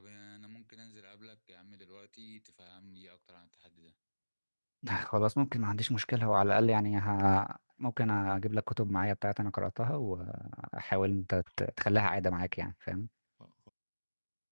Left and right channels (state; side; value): inverted; both; correlation -1.00